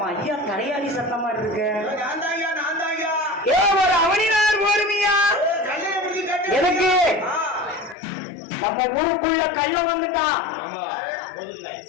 ஐயா தலையாளி சத்தம் மாதிரி இருக்கு. ஒரு அவனினார் போருமியா எதுக்கு? நம்ம ஊருக்குள்ள கள்ள வந்துட்டான்.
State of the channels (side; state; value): right; drops out; at 8.0 s